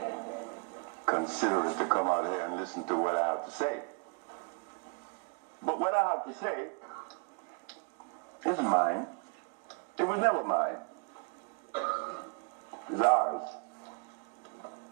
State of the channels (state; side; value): quieter; left; 35.0 dB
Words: considerate to come out here and listen to what I have to say. But what I have to say is mine. It was never mine. It's ours.